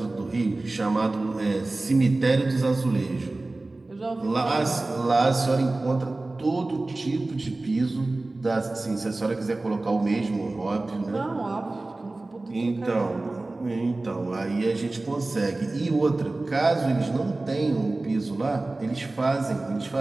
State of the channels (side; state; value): left; quieter; 3.0 dB